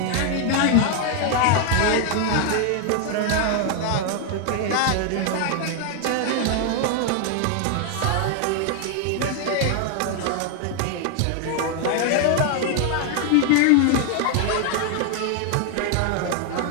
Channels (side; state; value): both; different; correlation 0.00